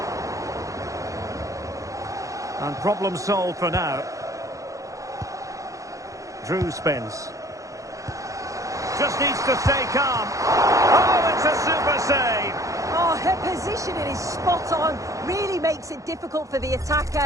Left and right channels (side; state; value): left; late; 0.16 ms